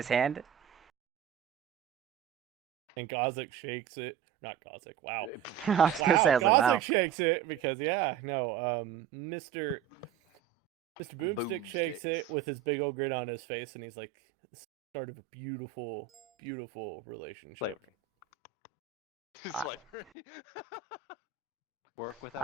hand. And Gozik shakes it. Not Gozik, wow. I was gonna say, I was like, wow. Gozik shakes it because, Mr. Boomstick shakes it with his big old grin on his face, and he's like, start of a beautiful, beautiful relationship. Slavery. Slavery. Work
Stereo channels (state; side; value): quieter; left; 9.5 dB